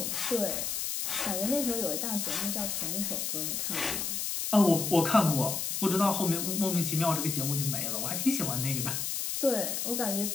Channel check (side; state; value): left; noise; hiss, 2 dB below the sound